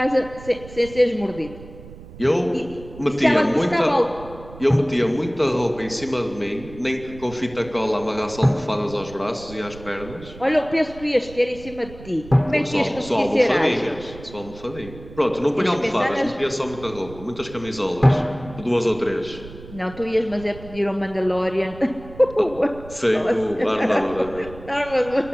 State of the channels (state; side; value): noise; right; rumble, 17 dB below the sound